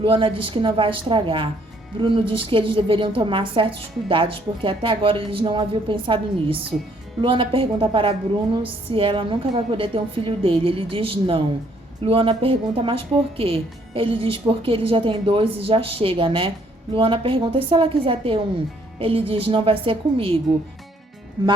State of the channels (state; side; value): normal; both; correlation 0.66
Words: diz que não vai estragar. Bruno diz que eles deveriam tomar certos cuidados, porque até agora eles não haviam pensado nisso. Luana pergunta para Bruno se ela nunca vai poder ter um filho dele. Ele diz não. Luana pergunta: mas por quê? Ele diz: porque ele já tem 2 e já chega, né? Luana pergunta: e se ela quiser ter um? Ele diz: não vai ser comigo.